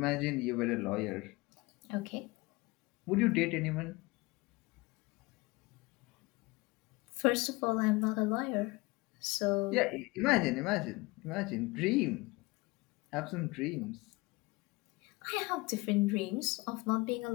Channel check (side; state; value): right; quieter; 23.5 dB